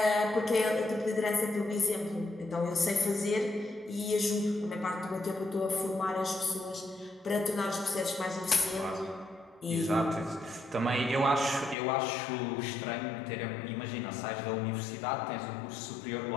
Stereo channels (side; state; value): right; drops out; at 11.8 s